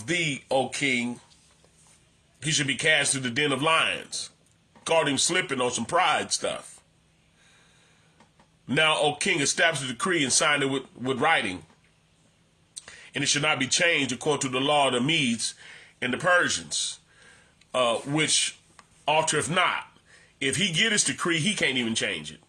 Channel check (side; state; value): both; identical; correlation 1.00